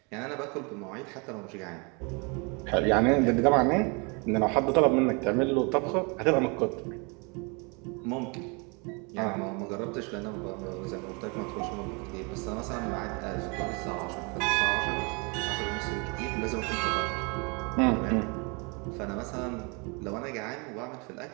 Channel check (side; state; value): left; quieter; 31.5 dB